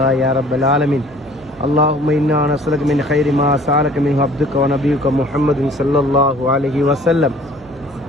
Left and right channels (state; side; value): noise; right; hum, 24 dB below the sound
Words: يا رب العالمين. اللهم إنا نسألك من خير ما سألك منه عبدك ونبيك محمد صلى الله عليه وسلم